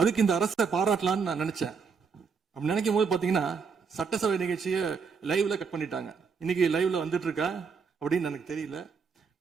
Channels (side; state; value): left; quieter; 5.5 dB